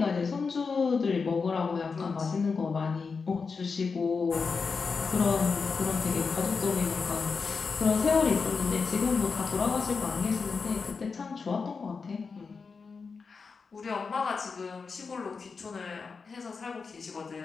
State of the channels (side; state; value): right; quieter; 5.0 dB